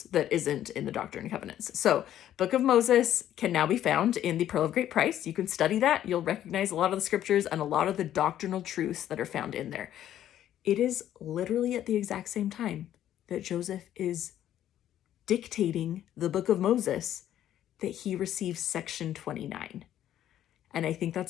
that isn't in the Doctrine and Covenants. So Book of Moses can now be found in the Pearl of Great Price. You can study that. You'll recognize a lot of the scriptures and a lot of the doctrinal truths that are found in there. It is literally at the exact same time that Joseph is dictating the Book of Moses that he receives section 29. And I think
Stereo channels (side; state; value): right; quieter; 11.6 dB